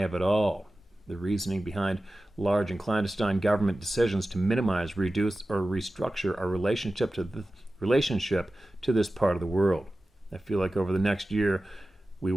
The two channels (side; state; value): both; normal; correlation 0.95